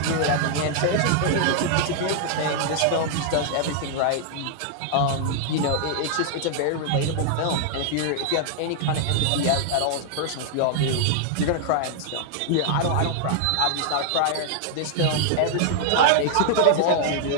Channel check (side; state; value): both; different; correlation 0.00